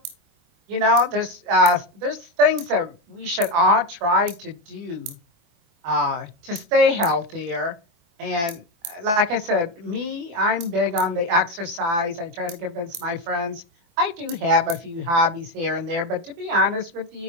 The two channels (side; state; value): left; late; 24 ms